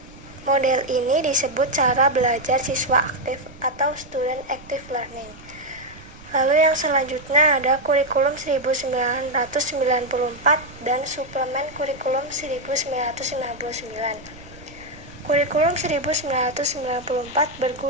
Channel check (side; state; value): right; noise; rumble, 20 dB below the sound